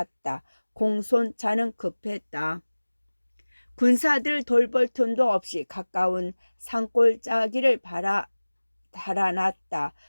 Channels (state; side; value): inverted; both; correlation -1.00